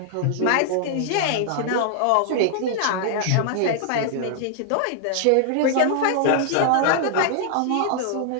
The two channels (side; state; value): both; different; correlation -0.01